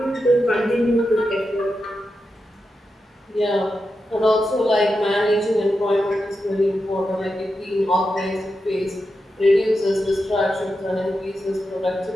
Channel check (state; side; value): normal; both; correlation 0.88